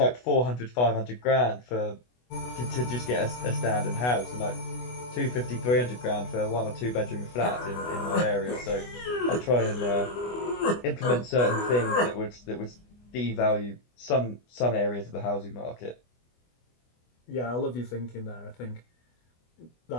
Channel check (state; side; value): late; right; 24 ms